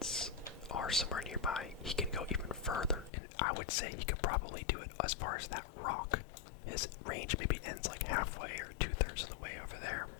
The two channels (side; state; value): right; drops out; at 3.1 s